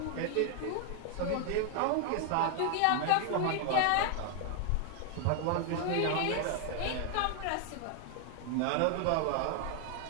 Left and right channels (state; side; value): different; both; correlation 0.00